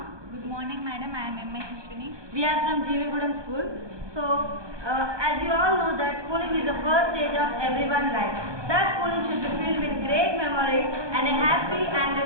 Good morning, madam. I am M.A. Krishni. We are from Jeevigudam School. So, as you all know that schooling is the first stage of everyone's life. That schooling should be filled with great memories and a happy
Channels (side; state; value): left; late; 1.2 ms